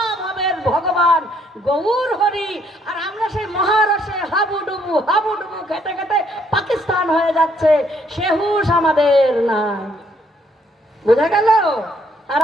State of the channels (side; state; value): both; normal; correlation 0.68